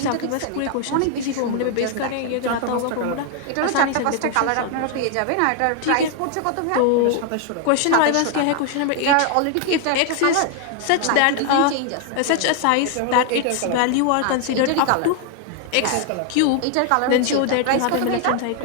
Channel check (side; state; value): both; different; correlation 0.00